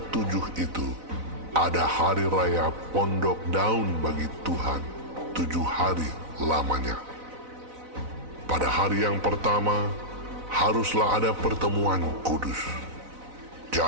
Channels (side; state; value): left; late; 4.0 ms